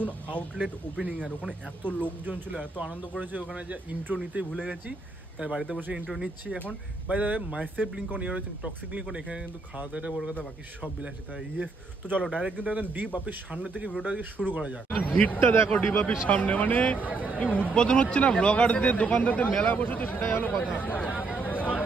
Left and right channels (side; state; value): left; quieter; 3.8 dB